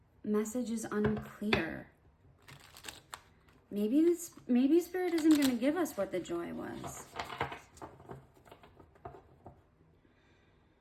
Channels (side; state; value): both; identical; correlation 1.00